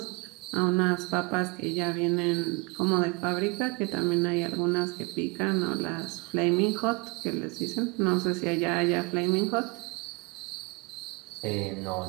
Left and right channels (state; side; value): quieter; left; 28.6 dB